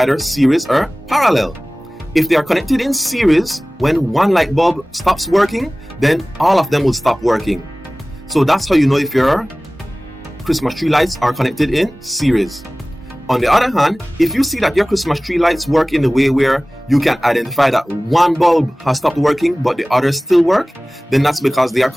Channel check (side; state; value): both; normal; correlation 0.98